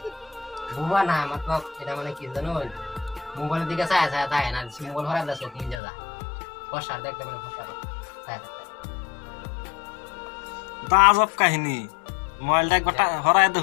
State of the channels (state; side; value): drops out; right; at 5.8 s